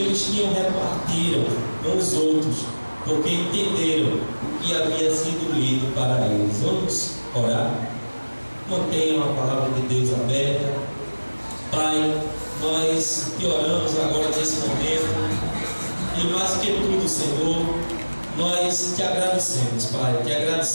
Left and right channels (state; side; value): inverted; both; correlation -1.00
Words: eles tinham repartiram com os outros, porque entenderam o que havia sido lido para eles. Vamos orar? Mantenham a palavra de Deus aberta. Pai, nós te oramos agora nesse momento. E mais que tudo, Senhor, nós te agradecemos, Pai. Te